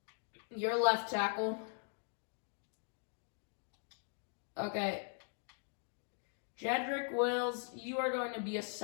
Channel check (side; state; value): right; silent; 51 dB below the other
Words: You're left tackle. Okay. Jedrick Wills, you are going to be a